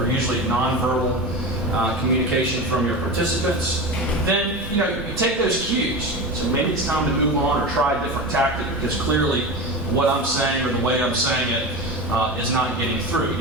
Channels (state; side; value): normal; both; correlation 0.25